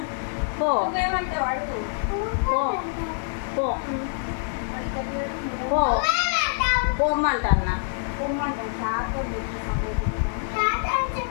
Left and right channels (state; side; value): silent; right; digital silence